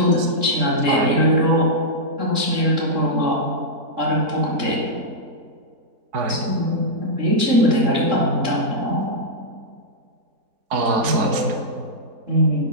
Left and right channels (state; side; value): late; left; 3.8 ms